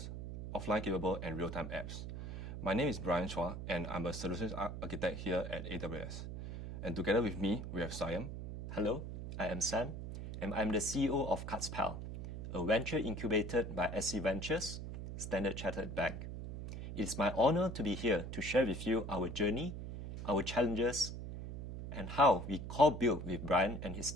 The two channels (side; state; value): right; noise; hum, 7 dB below the sound